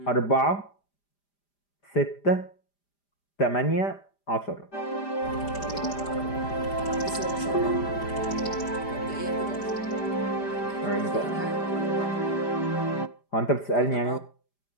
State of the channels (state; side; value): late; right; 5.0 ms